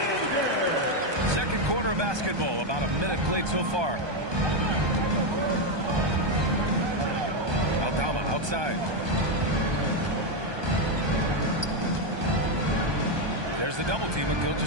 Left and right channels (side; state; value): left; late; 1.2 ms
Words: Second quarter of basketball. About a minute played so far. Aldama outside. There's the double team with